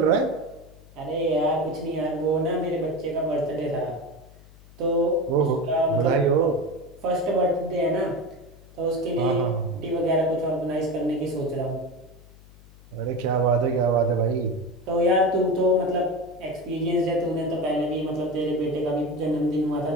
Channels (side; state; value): left; noise; hum, 23 dB below the sound